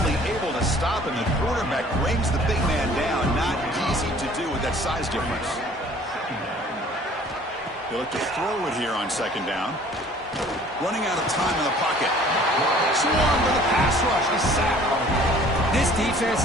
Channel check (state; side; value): normal; both; correlation 0.53